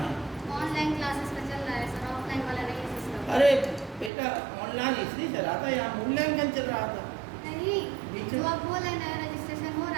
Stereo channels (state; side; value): drops out; left; at 4.1 s